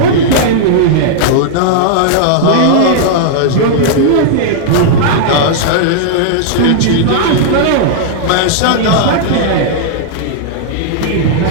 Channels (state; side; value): different; both; correlation -0.01